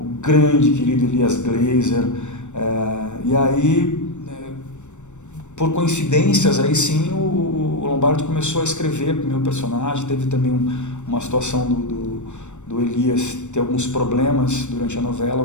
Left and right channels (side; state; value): right; late; 0.84 ms